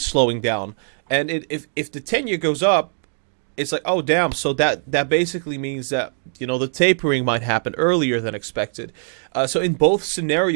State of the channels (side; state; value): left; silent; 61 dB below the other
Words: slowing down. And if the 10-year goes up, it's like, oh, damn. So that basically means that, the tapering might happen earlier than expected. So in both